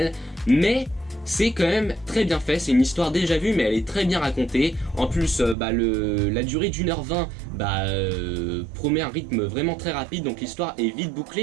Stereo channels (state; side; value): drops out; left; at 5.6 s